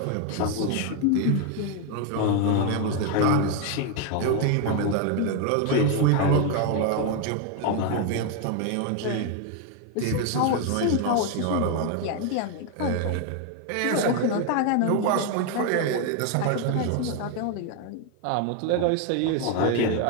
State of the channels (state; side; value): different; both; correlation 0.01